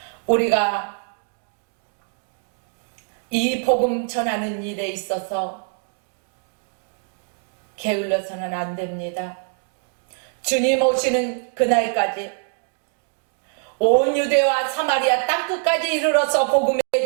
우리가 이 복음 전하는 일에 있어서 게을러서는 안 됩니다. 주님 오시는 그날까지 온 유대와 사마리아 땅끝까지 이르러서 복음의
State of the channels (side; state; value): left; silent; 63 dB below the other